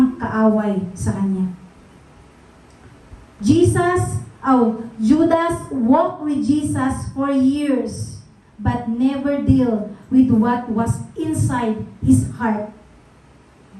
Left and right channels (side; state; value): both; identical; correlation 1.00